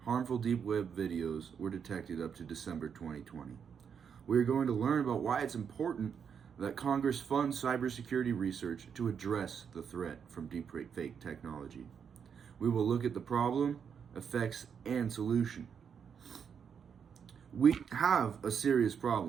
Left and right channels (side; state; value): left; quieter; 7.2 dB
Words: deep web videos were detected up to December 2020. We are going to learn about why it's important that Congress funds cybersecurity research to address the threat from deepfake technology. We will look at the problem, effects, and solution. We have a serious